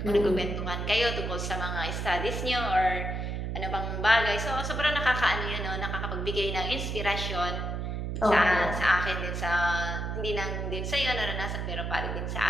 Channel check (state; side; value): noise; right; hum, 3 dB below the sound